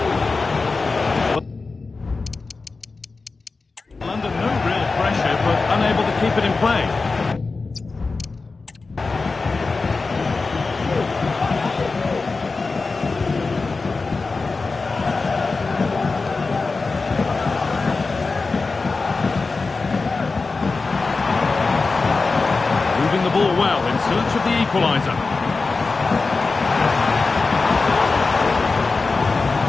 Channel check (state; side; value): quieter; right; 4.0 dB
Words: London, no real pressure, but unable to keep it in play. Moving the ball well in search of the equaliser.